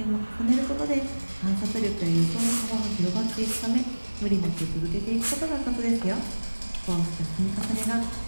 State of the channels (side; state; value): both; inverted; correlation -1.00